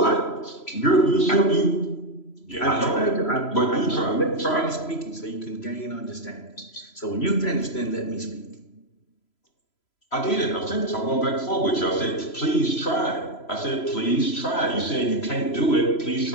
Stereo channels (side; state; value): right; late; 3.0 ms